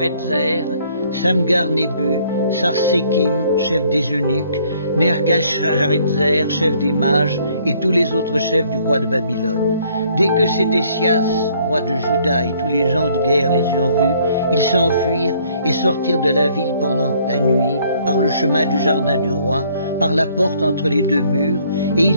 Samgar-Nébu, Sarsékim, chef des eunuques, Nergal-Sharezer, chef des mages, et tous les autres chefs du roi de Babylone. Dès que Sédécias, roi de Juda, et tous les gens de guerre les eurent vus, ils s'enfuirent et sortirent de la ville pendant la nuit, par le chemin du jardin du roi, par la porte entre les deux murs, et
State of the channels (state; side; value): inverted; both; correlation -0.63